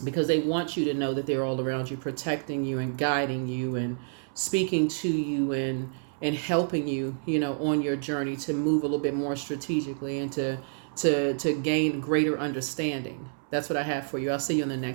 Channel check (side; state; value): left; silent; 59 dB below the other